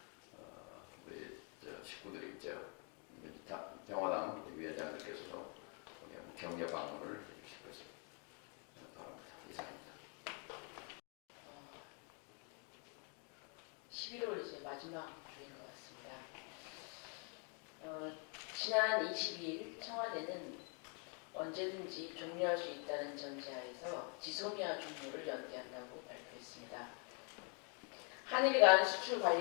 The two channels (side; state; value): right; quieter; 37.8 dB